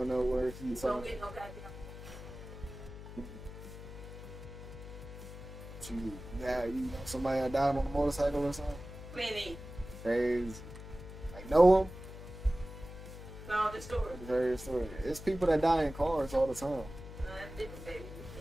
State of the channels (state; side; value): noise; left; hum, 13 dB below the sound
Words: nowhere. You don't get no goddamn. You know somebody that died on a motorcycle or something? Plenty. Crazy. Like know them? No, the story. Very story. It's people that die in cars all the time. No, that's different, baby.